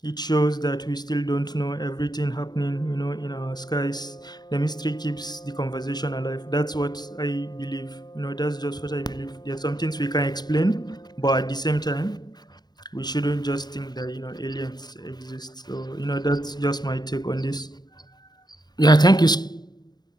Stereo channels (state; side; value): late; right; 0.20 ms